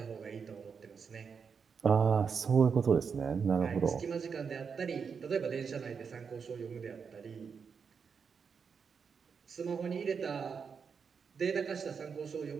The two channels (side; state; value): left; quieter; 6.1 dB